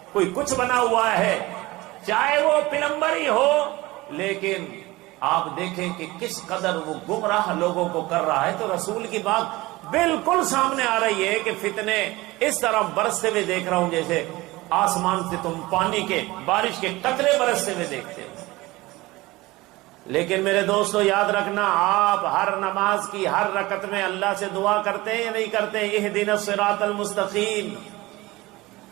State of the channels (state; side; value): quieter; left; 20.3 dB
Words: کوئی کچھ بنا ہوا ہے، چاہے وہ پلمبر ہی ہو، لیکن آپ دیکھیں کہ کس قدر وہ گمراہ لوگوں کو کر رہا ہے۔ تو رسول کی بات بالکل سامنے آ رہی ہے کہ فتنے اس طرح برستے ہوئے دیکھ رہا ہوں جیسے آسمان سے تم پانی کے، بارش کے قطرے برستے ہوئے دیکھتے ہو۔ لیکن میرے دوستو یاد رکھنا، آپ ہر نماز کی ہر رکعت میں اللہ سے دعا کرتے ہیں یا نہیں کرتے؟ اہدنا الصراط المستقیم،